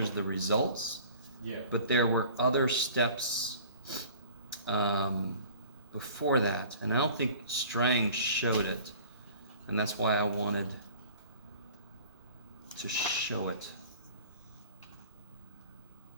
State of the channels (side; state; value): both; inverted; correlation -0.46